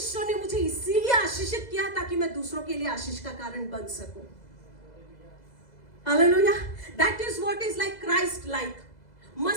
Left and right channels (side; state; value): right; late; 2.0 ms